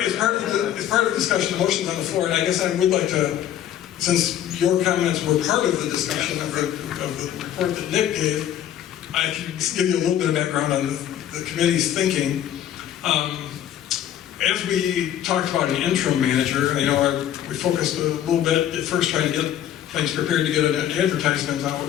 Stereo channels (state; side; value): quieter; right; 11.1 dB